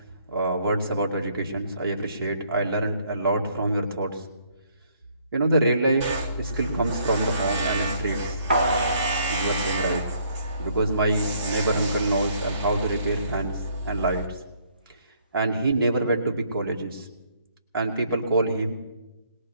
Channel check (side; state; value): both; inverted; correlation -0.66